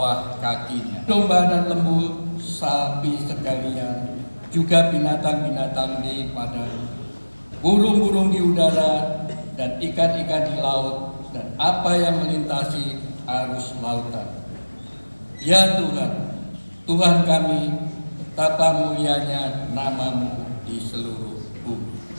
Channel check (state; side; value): inverted; both; correlation -1.00